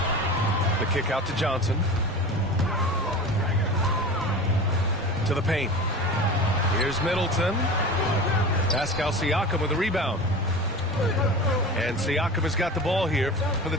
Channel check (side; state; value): both; normal; correlation 0.33